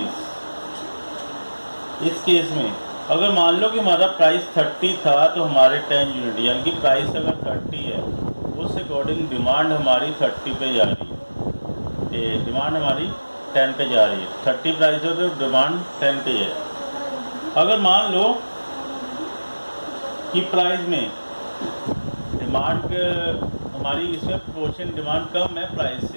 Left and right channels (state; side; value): inverted; both; correlation -1.00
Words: इस केस में अगर मान लो कि हमारा प्राइस 30 था तो हमारे 10 यूनिट, यानी कि प्राइस अगर 30 है उस अकॉर्डिंग डिमांड हमारी 30 पे जा रही है, डिमांड हमारी 10 पे जा रही है। 30 प्राइस हो तो डिमांड 10 पे है। अगर मान लो कि प्राइस में डिमांड हमारी इसमें प्रोपोर्शन डिमांड कम है प्राइस